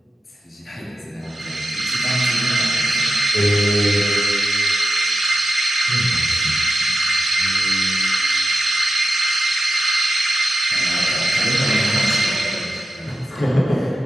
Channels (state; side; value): normal; both; correlation 0.91